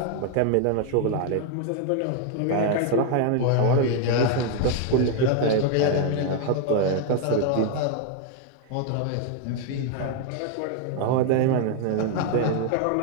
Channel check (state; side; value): different; both; correlation 0.00